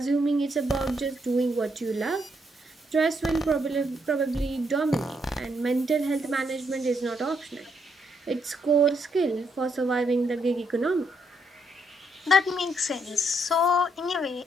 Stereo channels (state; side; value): normal; both; correlation 0.75